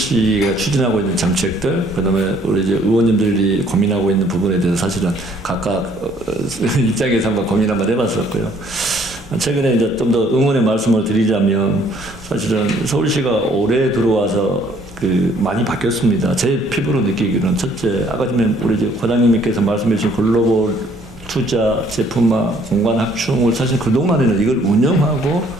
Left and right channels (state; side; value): normal; both; correlation 0.61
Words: 추진하고 있는 정책들, 그다음에 우리 이제 의원님들이 고민하고 있는 부분에 대해서 사실은 각각 입장에서 한번 고민 한번 해봤었고요. 최근에 이제 좀 더 응원의 말씀을 드리자면, 사실은 서울시가 올해 들어와서 많이 바뀌었습니다. 제 피부로 느끼기로는 첫째, 아까 전에 우리 이제 과장님께서 말씀해 주신 글로벌 투자, 제품화, 공간 확충을 사실 그동안에는 이걸 운영하고